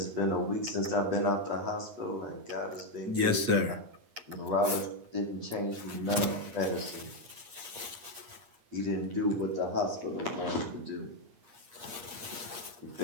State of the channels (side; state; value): left; late; 8.5 ms